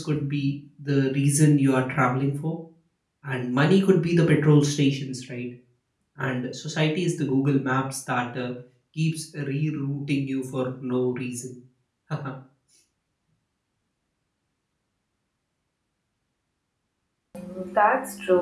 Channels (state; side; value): identical; both; correlation 1.00